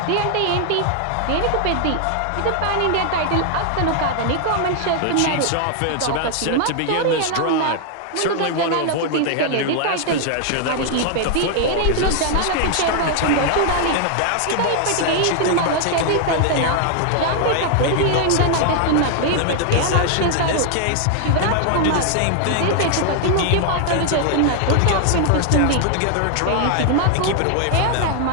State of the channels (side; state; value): both; different; correlation 0.00